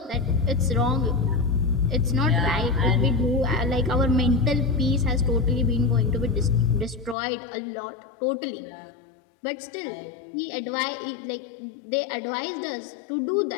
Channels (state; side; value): drops out; right; at 7.2 s